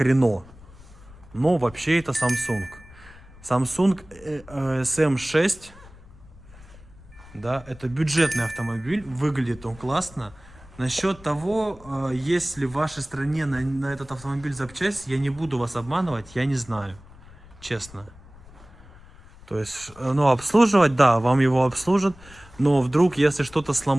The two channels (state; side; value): noise; left; rumble, 21 dB below the sound